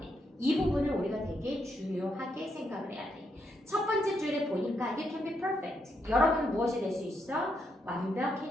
이 부분을 우리가 되게 중요하게 생각을 해야 돼. 첫 번째 줄에 보니까 You can be perfect. 여러분은 무엇이 될 수 있어?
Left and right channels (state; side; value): normal; both; correlation 0.79